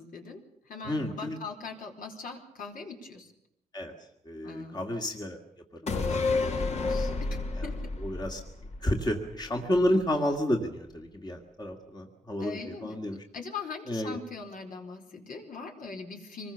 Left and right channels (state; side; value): normal; both; correlation 0.81